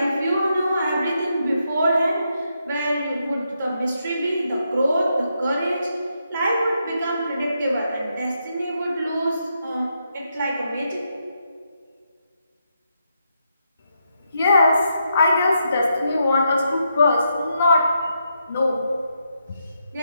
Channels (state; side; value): inverted; both; correlation -0.81